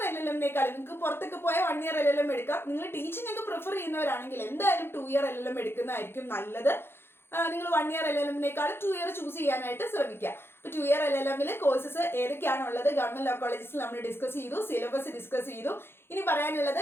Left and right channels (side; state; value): right; late; 0.11 ms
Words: LLM-നേക്കാളും നിങ്ങൾക്ക് പുറത്തൊക്കെ പോയ 1 ഇയർ LLM എടുക്കാം. നിങ്ങൾ ടീച്ചിങ് ഒക്കെ പ്രിഫർ ചെയ്യുന്നവരാണെങ്കിൽ എന്തായാലും 2 ഇയർ LLM എടുക്കുന്നതായിരിക്കും നല്ലത്. നിങ്ങൾ 1 ഇയർ LLM-നേക്കാളും 2 ഇയർ ചൂസ് ചെയ്യാനായിട്ട് ശ്രമിക്കുക. അപ്പോൾ 2 ഇയർ LLM-ൽ കോഴ്സസ് ഏതൊക്കെയാണുള്ളത് ഗവൺമെന്റ് ലോ കോളേജസിൽ നമ്മൾ ഡിസ്കസ് ചെയ്തു, സിലബസ് ഡിസ്കസ് ചെയ്തു. ഇനി പറയാനുള്ളത്